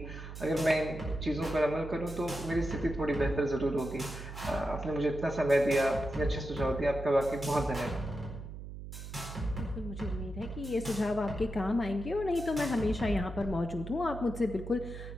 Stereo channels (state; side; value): noise; right; hum, 10 dB below the sound